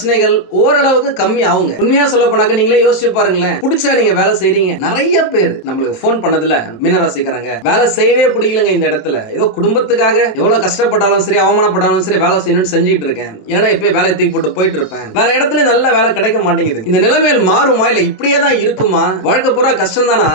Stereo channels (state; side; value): late; right; 27 ms